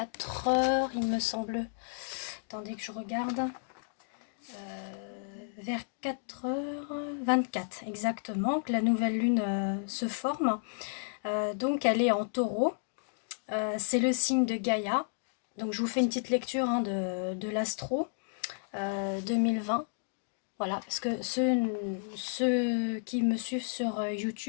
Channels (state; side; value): silent; right; digital silence